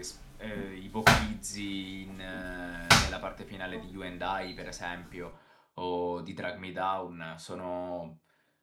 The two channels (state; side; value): identical; both; correlation 1.00